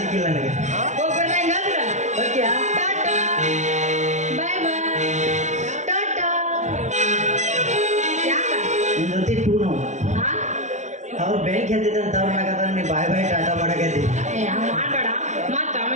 ನನಗೆ. ಹೋಗ್ಬರ್ಲಾ ಹಿಂಗಾದ್ರ? ಓಕೆ ಟಾಟಾ. ಬಾಯ್ ಬಾಯ್. ಟಾಟಾ. ಯಾಕ? ನಿನ್ ಜೊತೆ ಟೂ ನಾವು ಹಾ? ಅವ್ರು ಬೆಂಕಿ ಹತ್ತಿದ್ದಂತ ಅವ್ರನ್ನಾಗದ ನೀ ಬಾಯ್ ಬಾಯ್ ಟಾಟಾ ಮಾಡಕತ್ತಿ. ಏ, ಹಂಗ್ ಮಾಡ್ಬೇಡ. ಮತ್ತ್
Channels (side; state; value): left; late; 0.34 ms